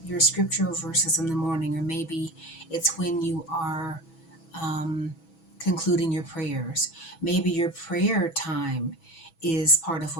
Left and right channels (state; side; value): late; right; 6.1 ms